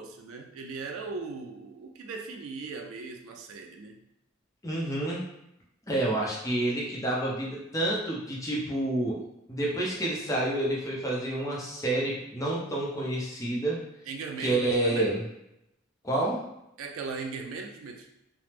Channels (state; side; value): normal; both; correlation 0.40